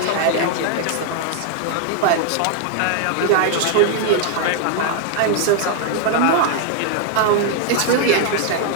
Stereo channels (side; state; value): both; different; correlation 0.00